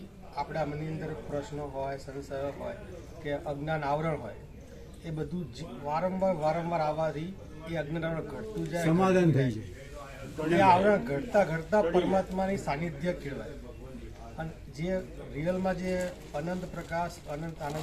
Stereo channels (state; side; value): identical; both; correlation 1.00